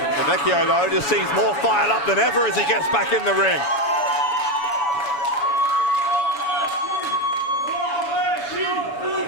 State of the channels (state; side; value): late; right; 7.1 ms